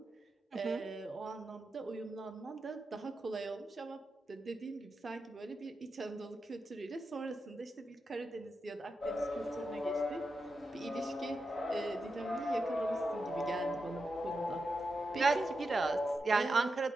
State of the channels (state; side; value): normal; both; correlation 0.88